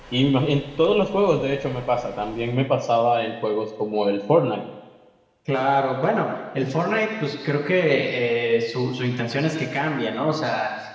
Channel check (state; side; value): identical; both; correlation 1.00